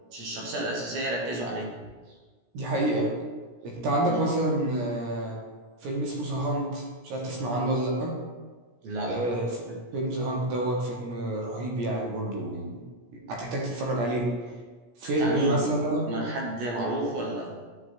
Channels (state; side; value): late; left; 17 ms